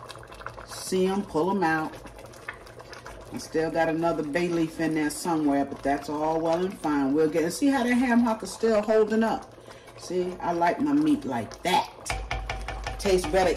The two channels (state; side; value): identical; both; correlation 1.00